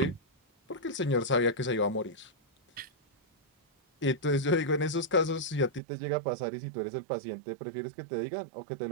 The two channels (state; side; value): drops out; left; at 5.8 s